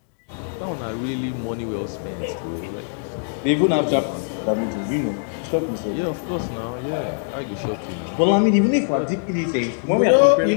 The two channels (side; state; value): right; silent; digital silence